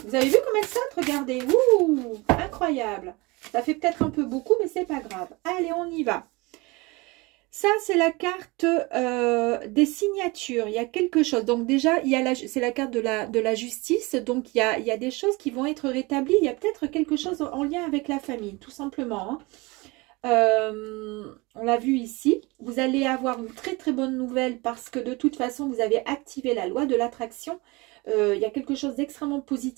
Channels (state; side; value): quieter; left; 24.7 dB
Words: Vous avez vu comme elle saute? Regardez. Ouh, incroyable. Ça fait peut-être un peu beaucoup, mais c'est pas grave. Allez, on y va. Ça, c'est la carte des signatures. Il y a quelque chose. Donc déjà, c'est la carte de la justice. Donc, il y a des choses qui vont être rétablies. Il y a peut-être quelque chose en lien avec la famille, tout simplement. Hein. On l'a vu ici, vous allez avoir une très très bonne nouvelle parce que de toute façon vous avez activé la loi de l'attraction. Il y a quelque chose d'extrêmement